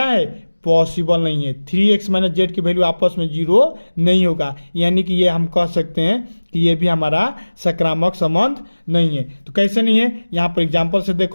है, पॉसिबल नहीं है। 3x माइनस जेड की वैल्यू आपस में 0 नहीं होगा, यानी कि ये हम कह सकते हैं कि ये भी हमारा सक्रामक संबंध नहीं है। तो कैसे नहीं है, यहाँ पर एग्जांपल से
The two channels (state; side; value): inverted; both; correlation -1.00